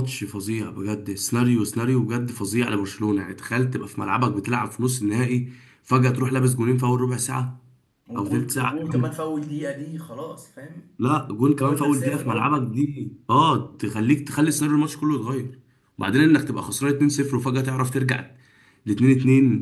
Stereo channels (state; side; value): identical; both; correlation 1.00